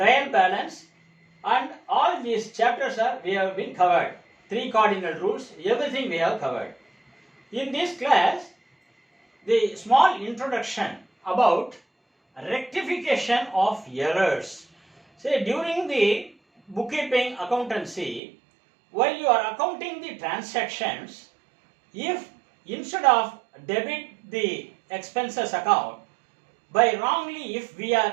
balance, and all these chapters we have been covered. 3 cardinal rules, everything we have covered. In this class, the small introduction about rectification of errors. Say, during the bookkeeping accountancy, while you are accounting the transactions, if instead of debit the expenses account, by wrongly if we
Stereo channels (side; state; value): left; drops out; at 18.2 s